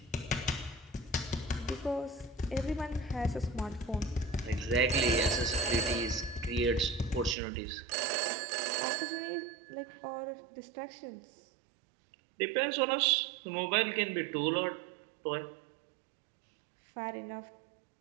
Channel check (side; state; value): left; drops out; at 7.4 s